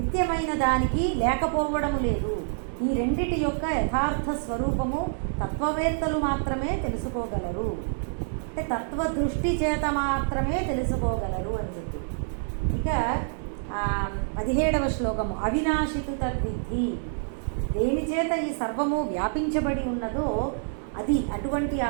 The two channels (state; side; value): silent; left; 58 dB below the other